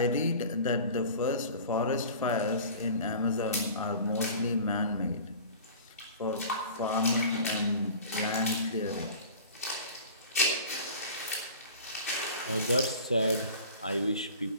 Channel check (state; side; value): inverted; both; correlation -0.41